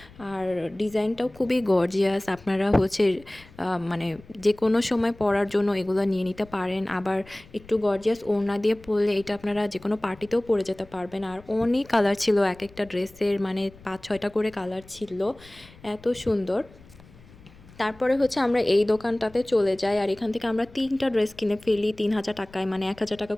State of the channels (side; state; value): left; noise; rumble, 23 dB below the sound